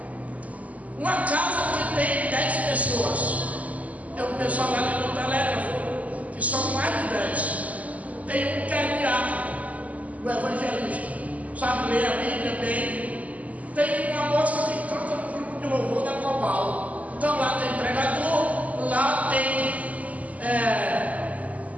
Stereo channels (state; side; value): late; left; 0.073 ms